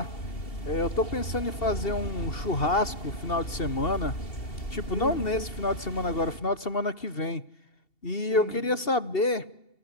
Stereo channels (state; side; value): late; right; 2.7 ms